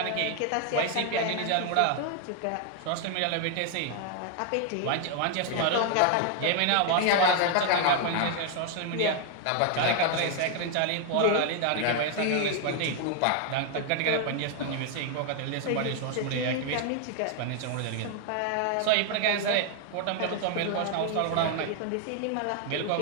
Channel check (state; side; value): different; both; correlation 0.00